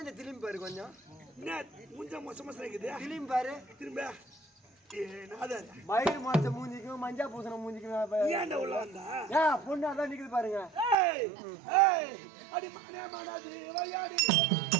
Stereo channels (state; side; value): drops out; left; at 11.0 s